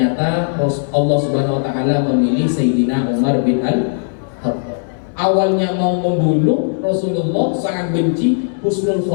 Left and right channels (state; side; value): silent; right; digital silence